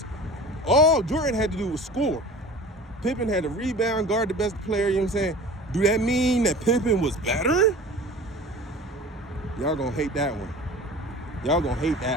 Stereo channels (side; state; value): both; normal; correlation 0.39